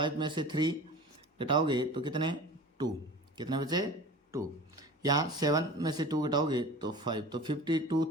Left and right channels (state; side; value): normal; both; correlation 0.38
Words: में से 3 घटाओगे तो कितने 2, कितने बचे 2। यहाँ 7 में से 2 घटाओगे तो 5, तो